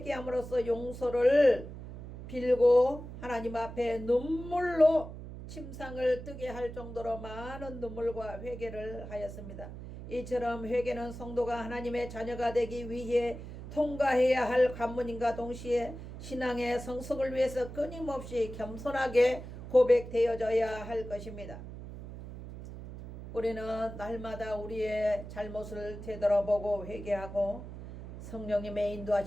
용서를 빌고 하나님 앞에 눈물로 침상을 뜨게 할 정도로 많은 눈물과 회개를 하였습니다. 이처럼 회개는 성도가 하나님의 자녀가 되기 위해 통과해야 할 관문인과 동시에 신앙의 성숙을 위해서 끊임없이 겸손하게 고백되어져야 할 것입니다. 우리는 날마다 우리의 잘못을 되돌아보고 회개하고 성령님의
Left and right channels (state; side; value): noise; right; hum, 11 dB below the sound